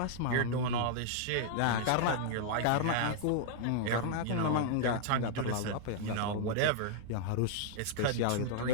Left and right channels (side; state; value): both; different; correlation -0.01